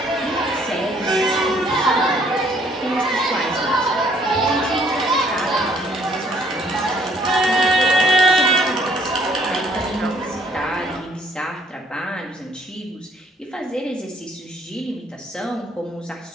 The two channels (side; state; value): both; normal; correlation 0.63